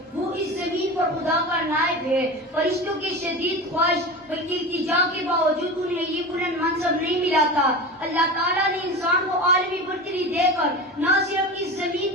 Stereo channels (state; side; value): normal; both; correlation 0.28